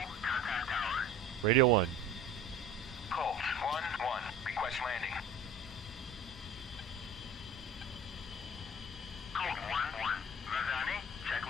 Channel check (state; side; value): normal; both; correlation 0.42